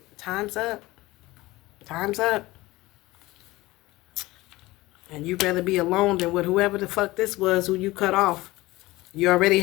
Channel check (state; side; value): quieter; right; 19.4 dB